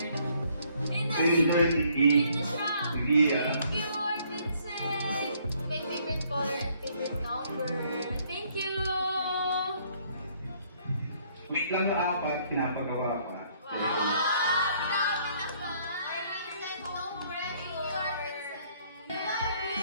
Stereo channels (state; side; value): inverted; both; correlation -0.65